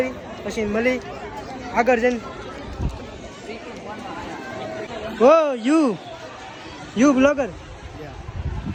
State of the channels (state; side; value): identical; both; correlation 1.00